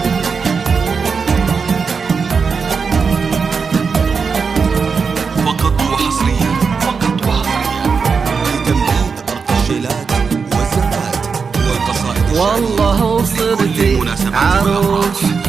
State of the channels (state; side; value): quieter; left; 5.4 dB